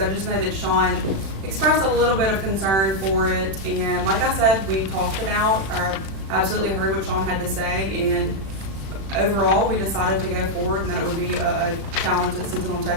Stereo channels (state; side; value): late; left; 36 ms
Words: just know that Sean expressed a little bit of concern for it. And like I said, we talked it out. I absolutely heard what Sean had to say. And overall, we decided to go forward and that it would be a challenge that Sentinel